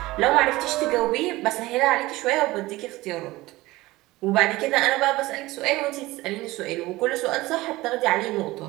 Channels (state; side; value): quieter; left; 19.2 dB